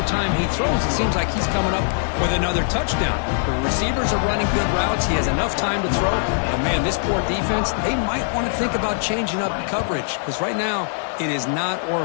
time he throws, it seems like he's coming up with another touchdown. The receivers are running good routes. He has enough time to throw. But, man, this poor defense, they might want to think about changing up coverage because right now it is not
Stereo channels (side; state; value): right; silent; digital silence